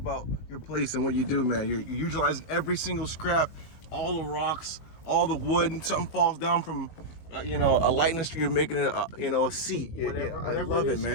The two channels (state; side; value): late; right; 19 ms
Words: your place and what you do, man. You're utilizing every single scrap, all the rocks, all the wood, and something falls down from, a light in the street, you're making it, a seat. Whatever I love it,